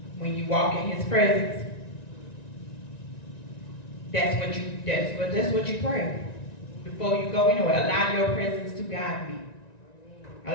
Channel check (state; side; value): late; right; 1.9 ms